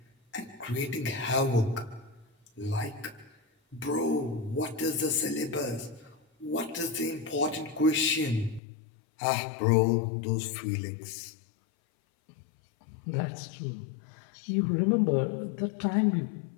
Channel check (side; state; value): right; drops out; at 8.6 s